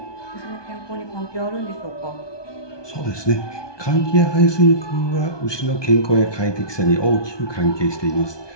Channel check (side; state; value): right; late; 1.2 ms